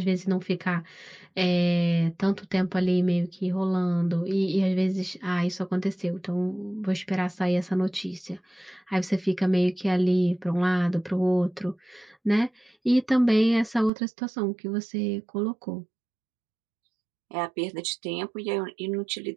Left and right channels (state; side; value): drops out; left; at 13.9 s